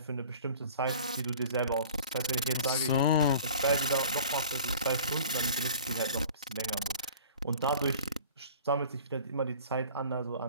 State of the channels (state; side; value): inverted; both; correlation -0.45